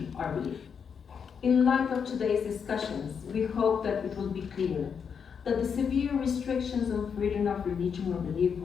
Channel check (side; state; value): right; quieter; 6.8 dB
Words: or belief. In light of today's discussions, we hope that it will be clear that the severe restrictions on freedom of religion or belief